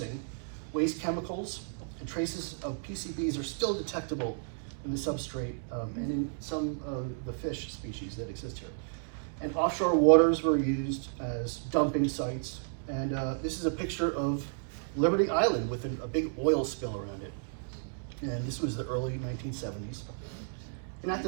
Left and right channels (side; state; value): left; silent; digital silence